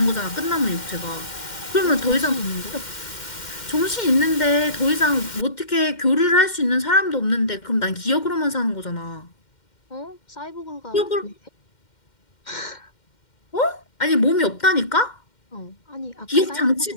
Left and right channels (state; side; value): late; right; 2.1 ms